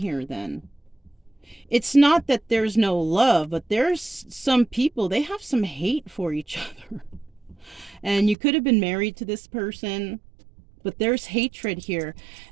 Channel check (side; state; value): left; drops out; at 8.3 s